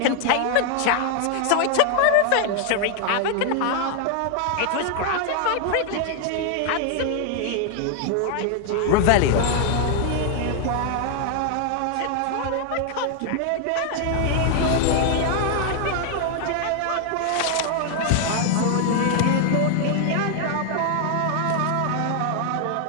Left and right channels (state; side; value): different; both; correlation 0.00